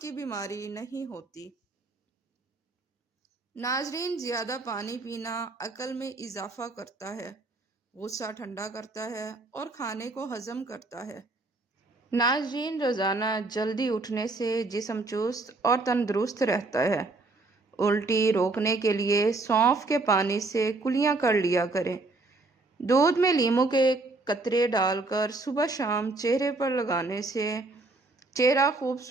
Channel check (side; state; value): left; quieter; 3.3 dB